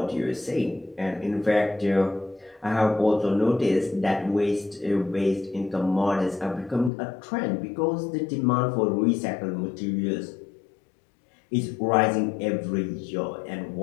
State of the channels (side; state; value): right; drops out; at 6.9 s